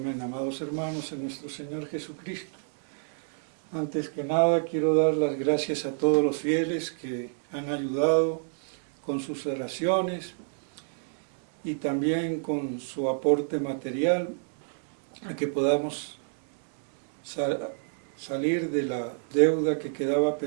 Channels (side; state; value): left; silent; digital silence